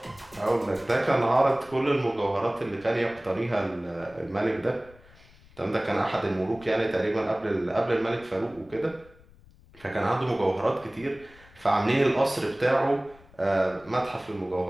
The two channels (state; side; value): noise; left; rumble, 25 dB below the sound